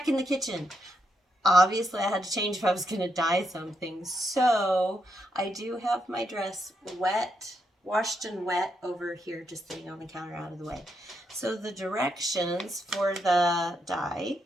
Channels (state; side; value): normal; both; correlation 0.80